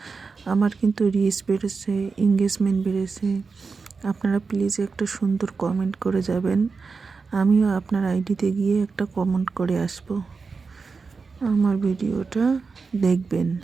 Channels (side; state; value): left; quieter; 4.7 dB